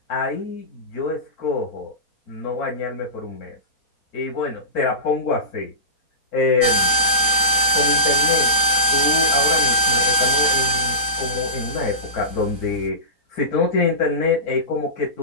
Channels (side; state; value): right; late; 4.2 ms